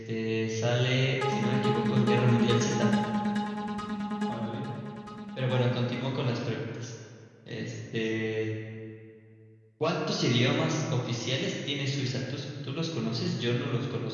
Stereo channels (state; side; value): identical; both; correlation 1.00